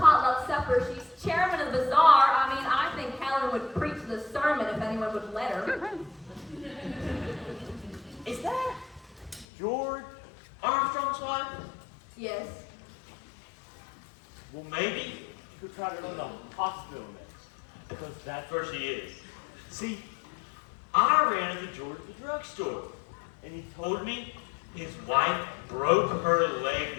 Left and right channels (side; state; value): right; drops out; at 9.5 s